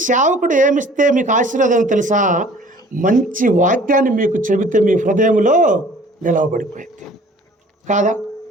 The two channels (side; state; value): both; normal; correlation 0.51